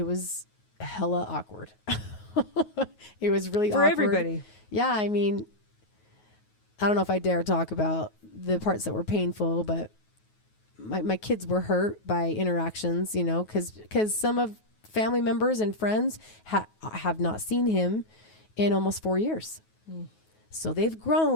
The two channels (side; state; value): right; late; 9.4 ms